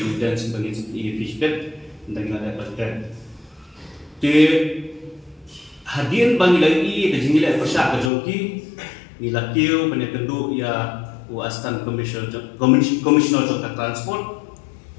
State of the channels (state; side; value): drops out; right; at 8.1 s